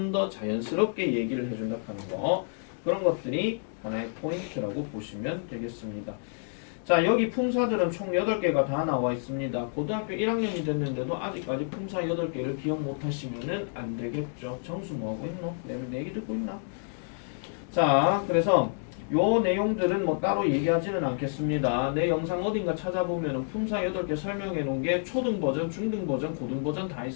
더 자연스럽게 얘기를 해준다 하는 거. 그런 것들이 하나의 포인트라고 보시면 되겠습니다. 자, 여기 품사들은 총 8개가 다 나와 있습니다. 고등학교 1학년이 됐는데도 아직까지 품사 8개를 기억 못 하시면은 안 되겠죠. 정수 뭐 하고 있노? 내 얘기 듣고 있나? 자, 그래서 요 내용들은 뭐 따로 얘기하지는 않겠습니다. 내 영상 어딘가 찾아보면은 품사 8개 설명해 놓은 게 초등 버전, 중등 버전, 고등 버전 다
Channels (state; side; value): silent; right; digital silence